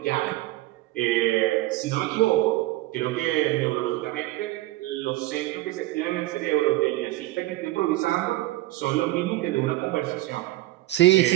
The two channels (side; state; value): left; quieter; 17.7 dB